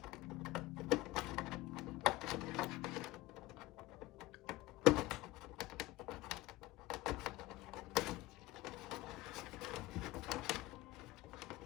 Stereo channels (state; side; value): quieter; right; 18.0 dB